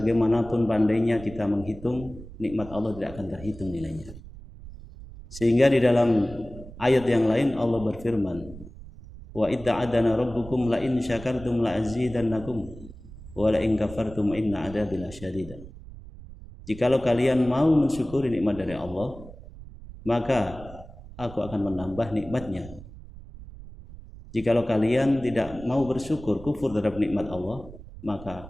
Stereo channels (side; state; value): right; noise; rumble, 16 dB below the sound